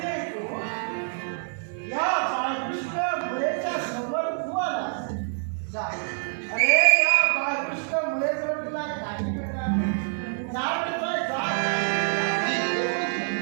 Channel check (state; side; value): silent; left; 57 dB below the other